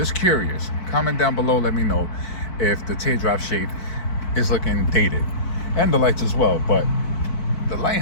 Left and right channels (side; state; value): right; late; 4.5 ms